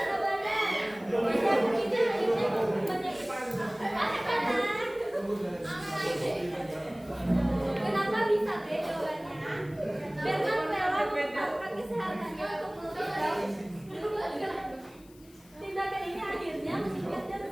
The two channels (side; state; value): left; noise; hiss, 26 dB below the sound